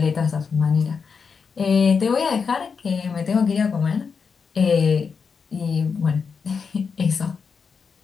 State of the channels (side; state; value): right; quieter; 5.7 dB